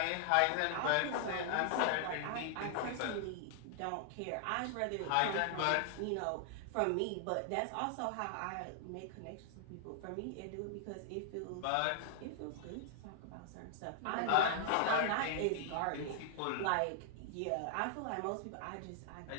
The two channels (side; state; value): both; different; correlation 0.00